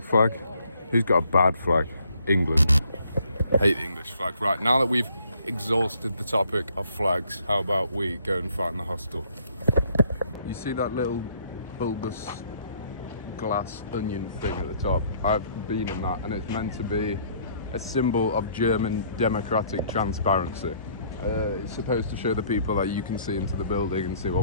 flag. Who's got a bad flag? England. Hate the English flag. Right, now that we've exhausted the topic of flags, how about we go and find the hostel? You see that little bulbous glass onion thing at the top? I've been in that, and it's meant to be a symbol of German democratic transparency. It's supposed to show the people that you can see into the building and see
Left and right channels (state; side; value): inverted; both; correlation -0.64